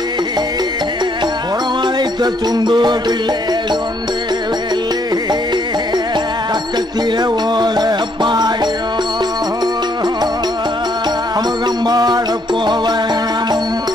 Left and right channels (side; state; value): both; normal; correlation 0.69